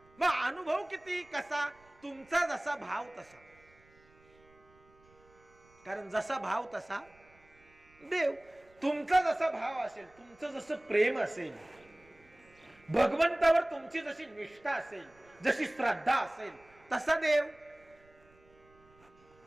मग अनुभव किती? कसा? तुमचा जसा भाव तसा, कारण जसा भाव तसा देव. तुमचा जसा भाव असेल, तुमचं जसं प्रेम असेल, भगवंतावर तुमची जशी निष्ठा असेल, जशी श्रद्धा असेल, तसा देव.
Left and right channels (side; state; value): right; noise; rumble, 29 dB below the sound